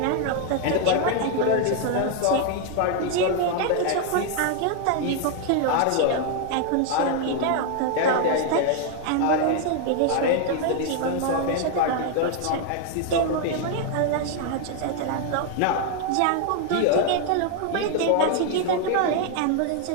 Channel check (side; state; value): both; different; correlation 0.00